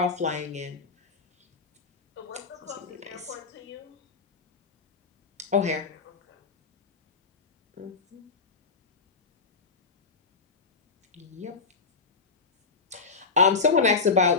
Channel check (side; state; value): right; quieter; 4.6 dB